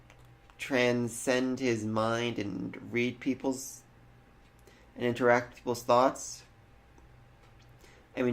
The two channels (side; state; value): both; identical; correlation 1.00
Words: transcend his mind and read and interact with people's thoughts. I